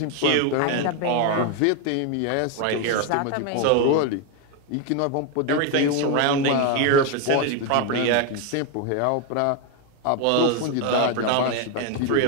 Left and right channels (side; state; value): both; different; correlation 0.01